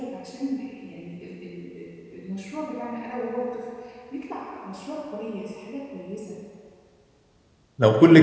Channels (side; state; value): both; identical; correlation 1.00